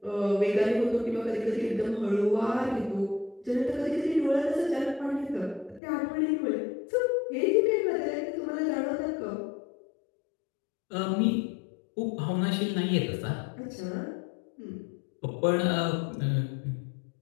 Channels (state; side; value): drops out; right; at 5.8 s